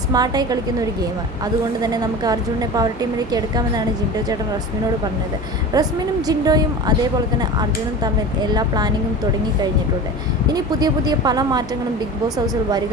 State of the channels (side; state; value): both; normal; correlation 0.32